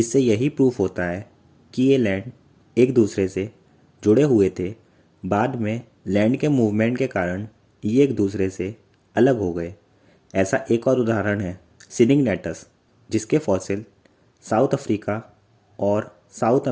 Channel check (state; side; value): identical; both; correlation 1.00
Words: यही प्रूफ होता है कि ये लैंड एक दूसरे से जुड़े हुए थे। बाद में लैंड के मूवमेंट के कारण ये एक दूसरे से अलग हो गए। ऐसा एक और उदाहरण है सिनिगनेटस, जिसके फॉसिल साउथ अफ्रीका और साउथ